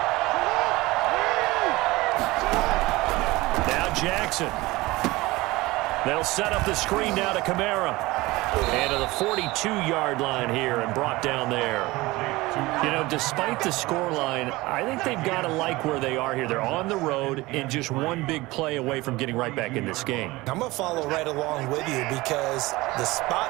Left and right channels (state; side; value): quieter; left; 20.6 dB